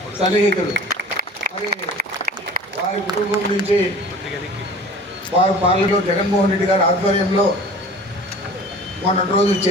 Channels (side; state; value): both; normal; correlation 0.43